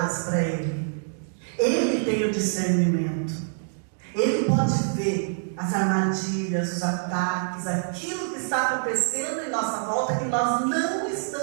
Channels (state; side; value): silent; left; digital silence